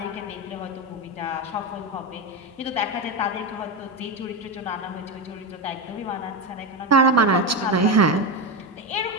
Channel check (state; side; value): normal; both; correlation 0.14